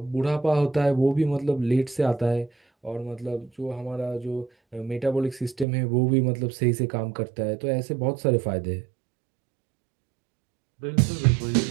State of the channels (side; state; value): left; drops out; at 5.7 s